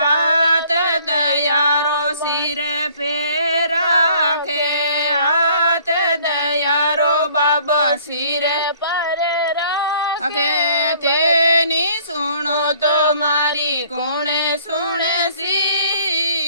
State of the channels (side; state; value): both; inverted; correlation -0.57